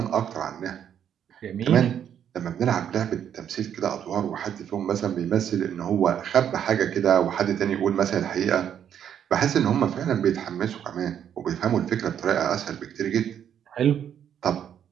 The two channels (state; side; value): quieter; left; 9.2 dB